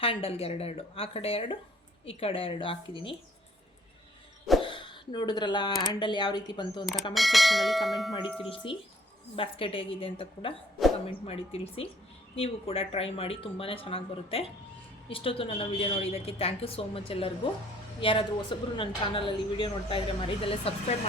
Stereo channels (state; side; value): normal; both; correlation 0.59